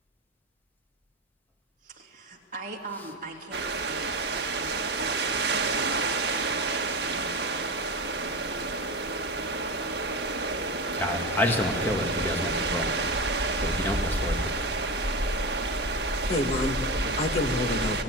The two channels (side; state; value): both; normal; correlation 0.21